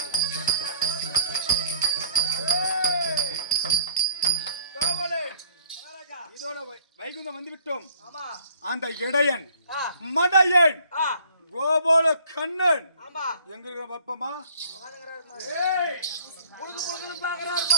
வைகுந்தம் வந்து விட்டோம். அந்த இடையன் மடையன் கோபால கண்ணன் எங்க இருக்கிற பாப்பமா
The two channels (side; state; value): both; inverted; correlation -0.56